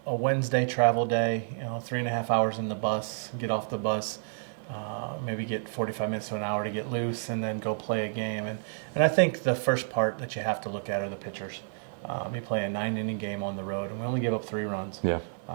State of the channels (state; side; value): silent; left; digital silence